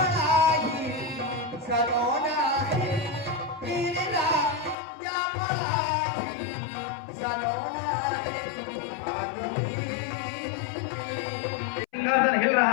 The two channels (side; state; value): right; drops out; at 4.8 s